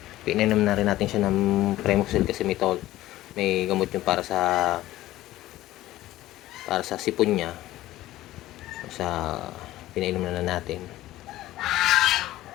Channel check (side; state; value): right; quieter; 15.6 dB